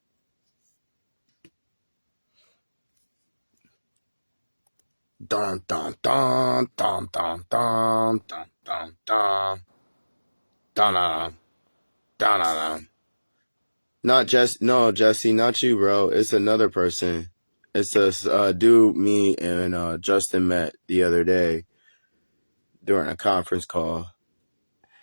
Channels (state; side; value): inverted; both; correlation -1.00